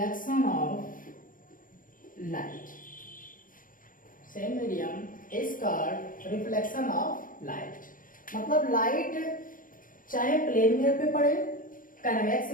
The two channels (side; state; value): right; late; 0.40 ms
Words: of light. Same medium is called reflection of light. मतलब light चाहे plane mirror पे पड़े, convex